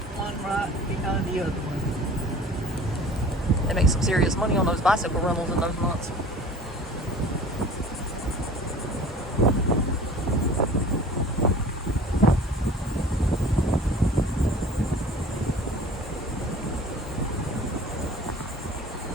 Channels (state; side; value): normal; both; correlation 0.44